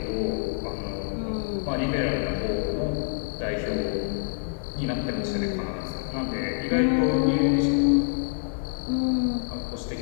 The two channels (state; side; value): silent; right; digital silence